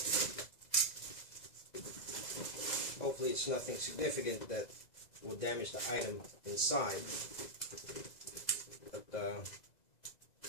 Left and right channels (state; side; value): late; right; 2.0 ms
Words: hopefully it's nothing significant that will damage the item inside. But there's